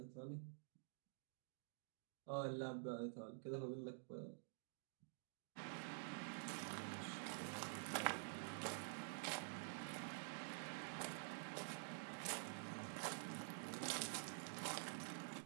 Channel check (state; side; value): silent; left; digital silence